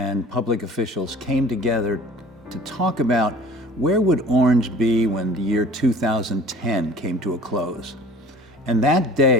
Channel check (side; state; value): both; normal; correlation 0.46